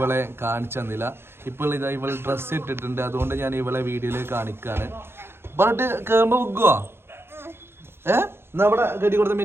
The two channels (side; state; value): left; late; 0.12 ms